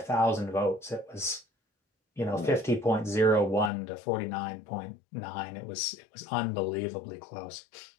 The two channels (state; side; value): drops out; right; at 3.7 s